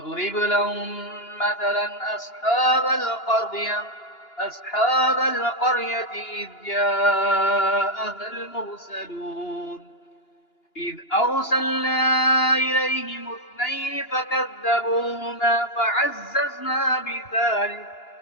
لهم مثلا أصحاب القرية إذ جاءها المرسلون إذ أرسلنا إليهم 2 فكذبوهما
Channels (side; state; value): right; late; 2.9 ms